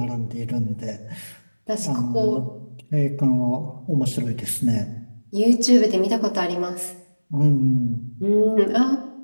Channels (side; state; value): both; inverted; correlation -1.00